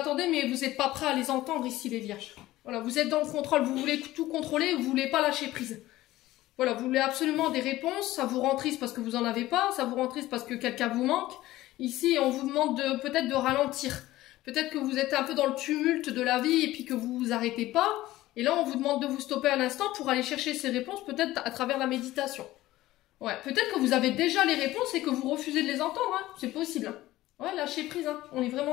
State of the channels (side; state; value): right; quieter; 16.4 dB